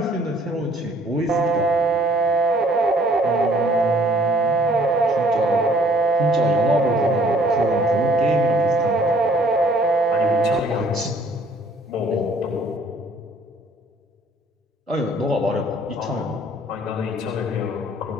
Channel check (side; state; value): both; normal; correlation 0.58